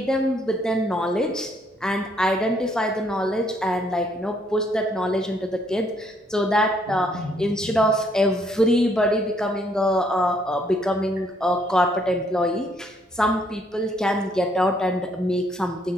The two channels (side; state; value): both; normal; correlation 0.69